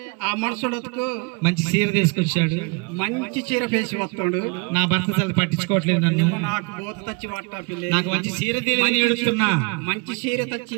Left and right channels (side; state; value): left; quieter; 30.6 dB